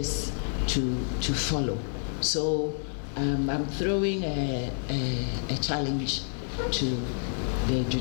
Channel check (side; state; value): right; silent; 59 dB below the other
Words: to follow. So I'm throwing a challenge to the